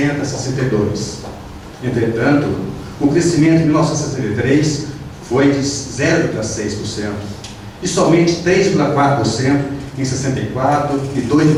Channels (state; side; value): identical; both; correlation 1.00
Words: a 62. Entretanto, o crescimento de 1963 foi de 0,6% e somente 3,4% em 64 e